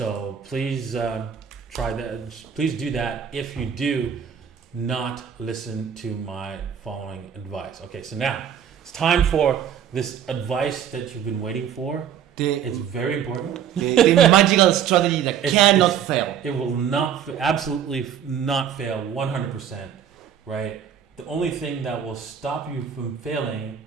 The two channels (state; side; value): quieter; left; 8.7 dB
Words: please try that. Please do that if you do not listen to my following advice. Okay, so now it's time for this advice that you've been waiting for. It's very important. The magical strategy that cannot fail. It will absolutely not fail 100%, right? The only thing that will stop you from failing